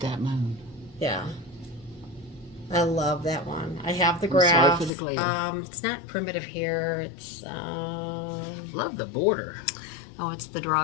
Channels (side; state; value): right; drops out; at 4.9 s